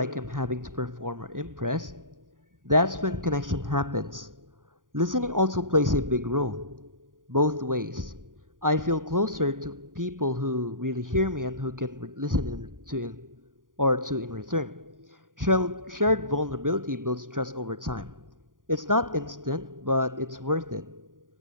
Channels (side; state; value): left; late; 0.89 ms